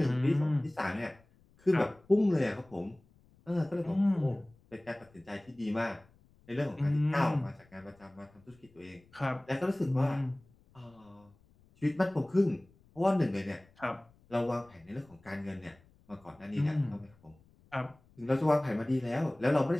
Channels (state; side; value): noise; left; rumble, 30 dB below the sound